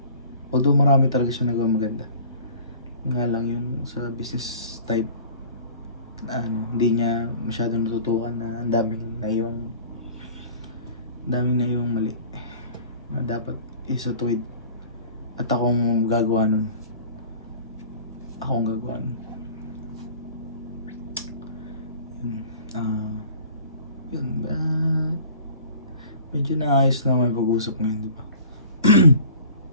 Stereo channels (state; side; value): inverted; both; correlation -0.45